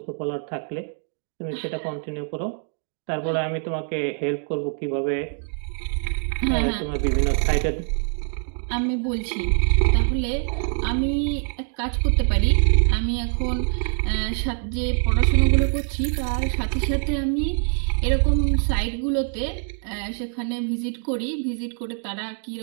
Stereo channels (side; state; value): left; silent; 58 dB below the other